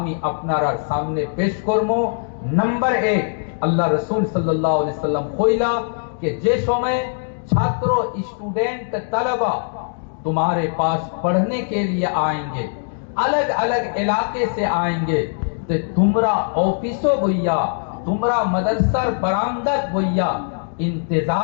আপনার সামনে পেশ করব। নাম্বার 1, আল্লাহ রাসূল সাল্লাল্লাহু আলাইহি সাল্লাম কইলা যে যে সময় ছাত্র, স্টুডেন্ট, তালেবা तुम्हारे पास पढ़ने के लिए आएंगे, अलग अलग इलाके से आएंगे, तो तुमरा ऑफिसो भैया, तुमरा मदरसर बरामदत भैया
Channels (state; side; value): silent; right; digital silence